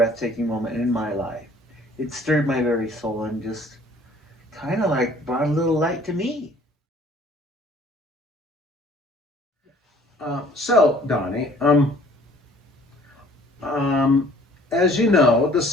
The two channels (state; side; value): normal; both; correlation 0.55